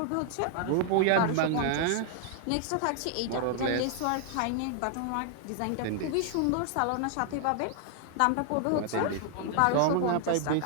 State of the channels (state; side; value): different; both; correlation 0.00